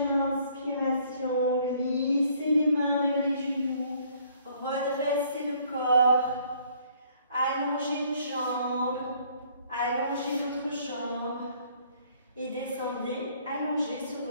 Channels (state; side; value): inverted; both; correlation -0.61